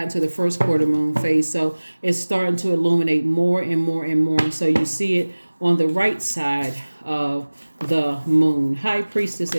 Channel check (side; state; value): both; inverted; correlation -1.00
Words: to the first quarter moon phase. So it's starting to illuminate more and more and more. So you see it on the right side of the moon. High Priestess